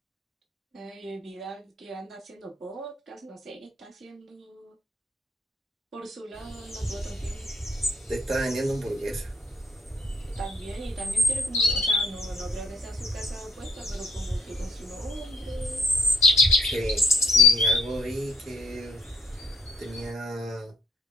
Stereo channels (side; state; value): both; normal; correlation 0.68